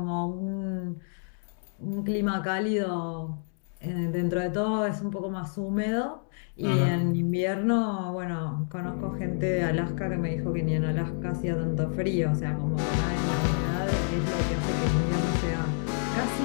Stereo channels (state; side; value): silent; right; 59 dB below the other